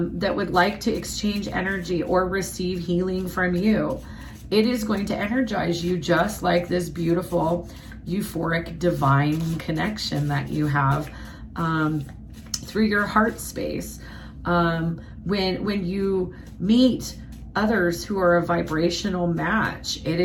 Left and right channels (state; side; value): identical; both; correlation 1.00